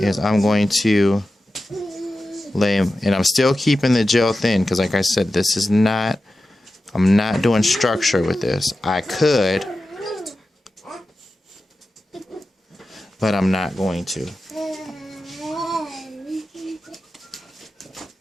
I'm going to lay, and I'm still keeping the gel thin because like I said, this is not, I'm not doing structure with this. I could, but I'm not going to.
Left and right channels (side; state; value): both; normal; correlation 0.93